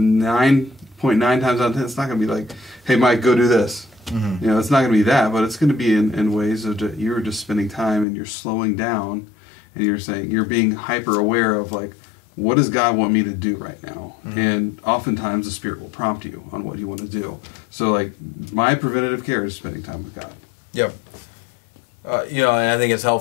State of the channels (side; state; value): right; drops out; at 8.1 s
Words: times out of 10, it's not gonna be hey Mike, go do this. It's not gonna be that, but it's gonna be in ways of you're just spending time and you're slowing down, and you're being hyper aware of what does God want me to do right now? And oftentimes the Spirit will prompt you on what you want to do. So my preventative care is spending time with God. Yep. And I think it's